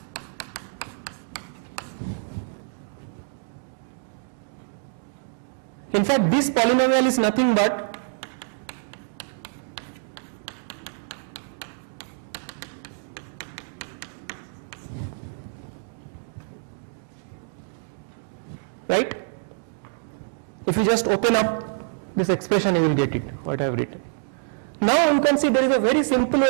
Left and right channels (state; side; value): silent; left; digital silence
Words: in fact this polynomial is nothing but right? If you just open up this expression, you will get it, what I have written. Now you can see there is a very simple